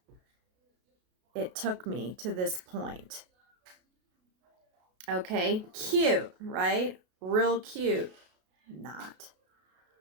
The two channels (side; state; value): left; late; 33 ms